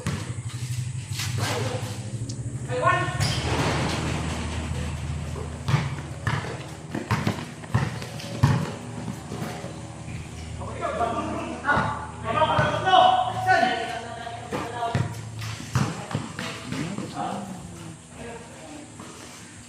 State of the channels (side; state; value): both; identical; correlation 1.00